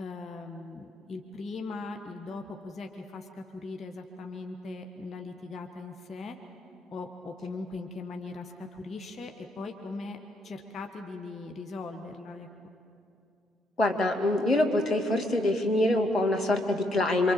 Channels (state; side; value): normal; both; correlation 0.73